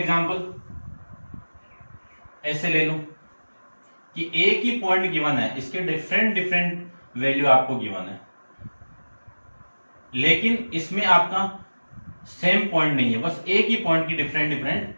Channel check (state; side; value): inverted; both; correlation -1.00